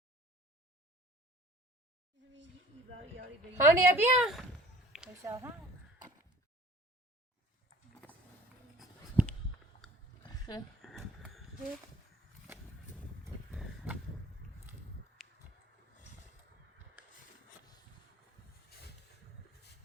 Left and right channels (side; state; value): both; normal; correlation 0.49